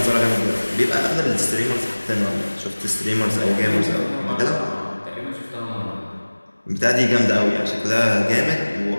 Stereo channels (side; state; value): both; inverted; correlation -1.00